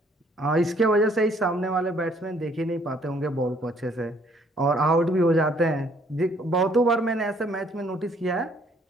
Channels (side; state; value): both; normal; correlation 0.63